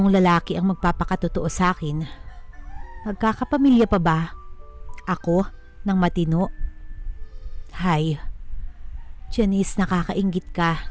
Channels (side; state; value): both; identical; correlation 1.00